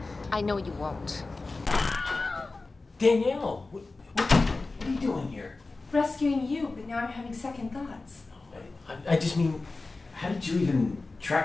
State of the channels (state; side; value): quieter; right; 3.5 dB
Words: I know you won't. Danielle, what are you doing here? Rescuing you, but now I'm having second thoughts. I just mean, how did you even